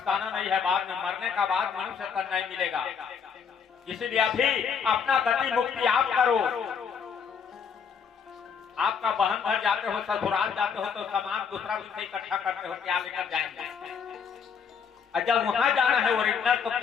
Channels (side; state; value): right; quieter; 6.7 dB